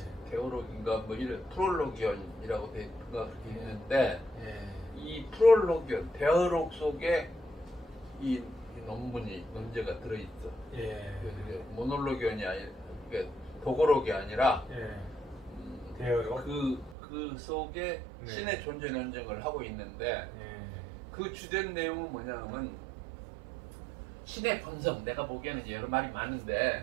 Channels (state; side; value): drops out; left; at 16.9 s